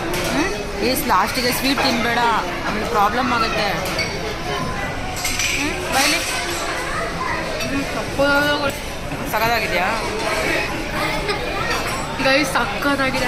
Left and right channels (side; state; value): both; identical; correlation 1.00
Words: ಈಸ್ ಲಾಸ್ಟಿಗೆ ಸ್ವೀಟ್ ತಿನ್ನಬೇಡ, ಆಮೇಲೆ ಪ್ರಾಬ್ಲಮ್ ಆಗುತ್ತೆ. ಬೈಲಿ ಸಕ್ಕತ್ತಾಗಿದೆಯಾ ಗೈಸ್? ಸಕ್ಕತ್ತಾಗಿದೆ